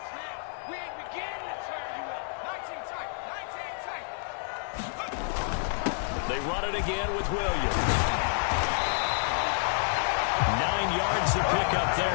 They run it again with Williams. 9 yards to pick up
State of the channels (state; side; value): silent; right; 58 dB below the other